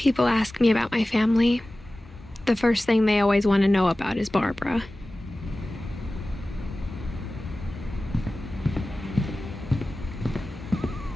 ask me about my family, the first thing they always want to know about is Barbara.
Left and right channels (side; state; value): both; normal; correlation 0.96